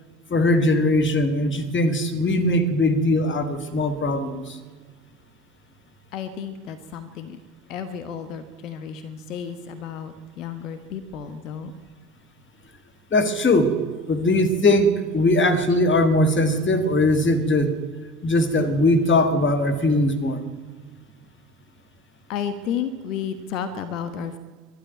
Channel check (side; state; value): both; normal; correlation 0.38